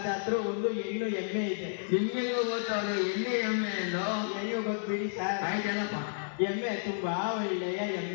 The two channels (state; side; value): silent; right; 57 dB below the other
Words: ಹತ್ರ ಒಂದು ಹೆಣ್ಣು ಎಮ್ಮೆ ಇದೆ. ನಿಮ್ಗೆ ಗೊತ್ತವ್ರು ಎಣ್ಣೆ ಎಮ್ಮೆ ಎಂದು? ಹೆಣ್ಣು ಗೊತ್ತಿಡಿ ಸರ್. ಆಯ್ತಲ್ಲಪ್ಪ. ಎಮ್ಮೆ ತುಂಬಾ ಒಳ್ಳೆಯ